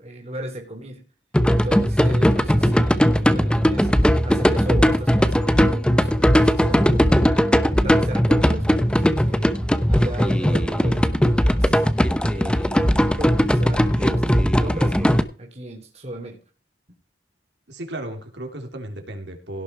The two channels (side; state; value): both; normal; correlation 0.95